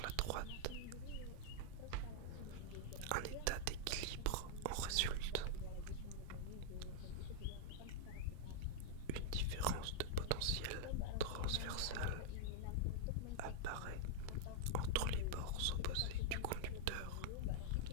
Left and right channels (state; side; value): different; both; correlation -0.01